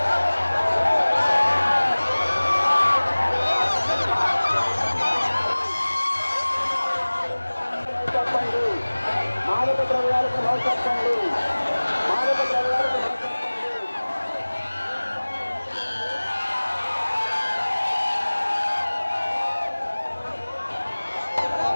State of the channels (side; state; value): both; inverted; correlation -1.00